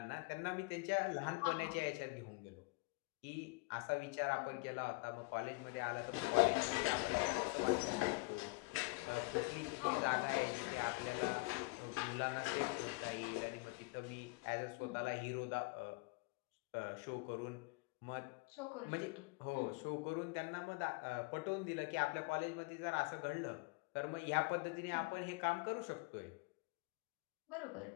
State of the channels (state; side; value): quieter; right; 26.0 dB